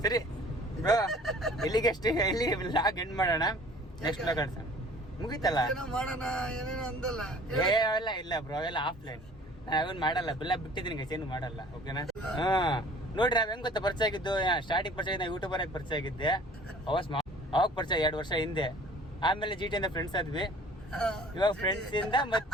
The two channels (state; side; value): normal; both; correlation 0.50